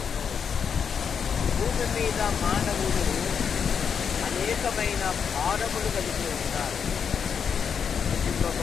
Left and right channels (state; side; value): quieter; right; 6.9 dB